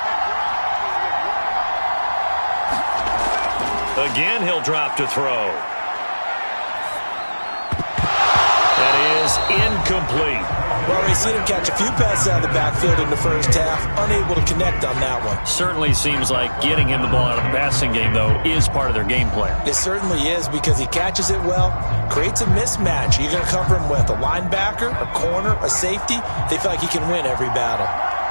Again, he'll drop to throw. That is incomplete. Well, we've seen him catch a few passes out of the backfield in the first half, unable to connect on that one. Certainly seems like getting him the ball out of the passing game, though, is part of their game plan. It certainly is, because he catches it well, creates a mismatch. You're going to cover him with a linebacker, a corner, a safety. They feel like he can win every battle.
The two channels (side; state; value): both; inverted; correlation -1.00